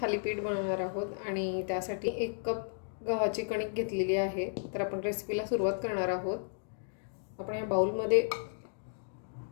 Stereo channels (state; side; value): silent; right; digital silence